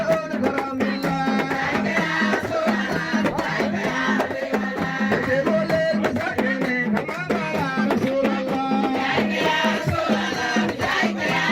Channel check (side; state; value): both; identical; correlation 1.00